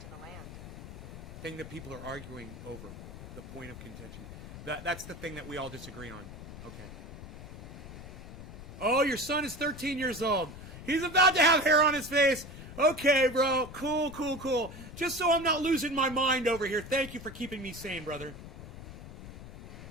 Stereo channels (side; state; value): left; noise; rumble, 13 dB below the sound